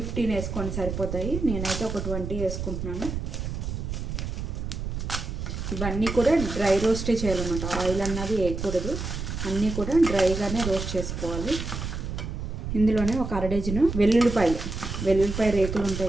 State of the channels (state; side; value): noise; right; rumble, 5 dB below the sound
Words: వేసుకోండి, సరిపోతాయి. నేనైతే ఒక 20 వేసుకుంటున్నాను. ఇవన్నీ కూడా డ్రై రోస్టే చేయాలన్నమాట, ఆయిల్ అన్నది వేయకూడదు. అన్నీ కూడా డ్రైగానే రోస్ట్ చేసుకోవాలి. ఇందులోనే ఒక 1/2 డజను వెల్లుల్లిపాయ రేకులు